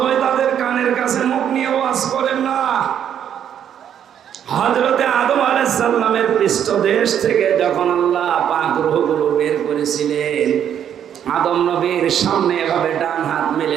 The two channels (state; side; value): quieter; left; 9.3 dB